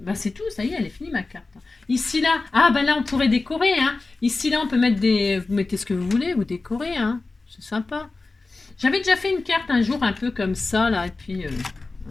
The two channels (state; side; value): quieter; right; 3.6 dB